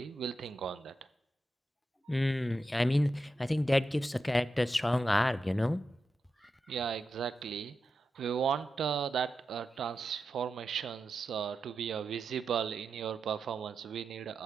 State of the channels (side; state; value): both; normal; correlation 0.89